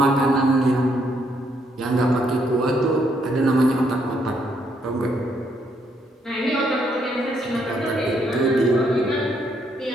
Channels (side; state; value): both; normal; correlation 0.73